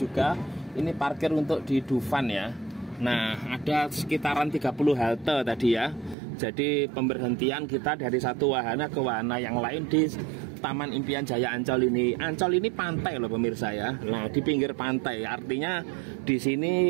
Ini parkir untuk di Dufan ya. Nah, ada sekitaran 30 halte tadi ya. Jadi pemberhentian kita dari satu wahana ke wahana yang lain di Taman Impian Jaya Ancol ini. Ancol ini pantai loh pemirsa ya. Nah, di pinggir pantai, artinya di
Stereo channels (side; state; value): left; drops out; at 6.2 s